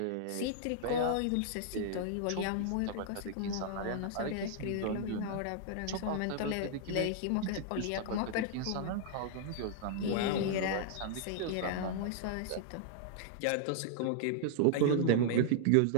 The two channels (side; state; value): both; different; correlation -0.01